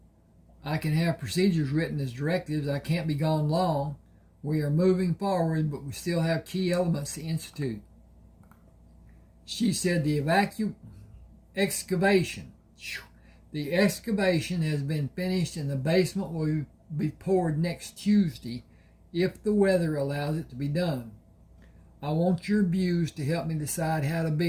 I can have procedures written as directives. I can't be gone long. We are moving forward, but we still have key elements to institute. She said the excavation. The excavation has been finished and the basement will be poured next Tuesday if the weather allows it to be done. I want your views to help me decide how to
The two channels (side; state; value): both; identical; correlation 1.00